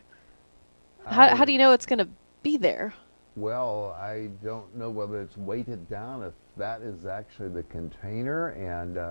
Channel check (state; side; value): inverted; both; correlation -1.00